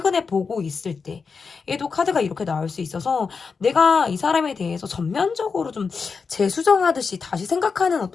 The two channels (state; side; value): quieter; right; 5.2 dB